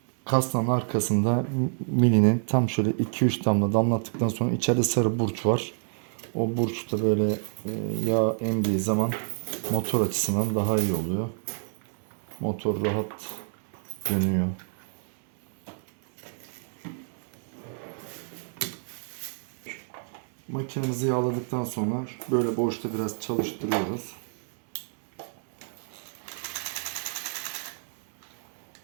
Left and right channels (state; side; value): silent; left; digital silence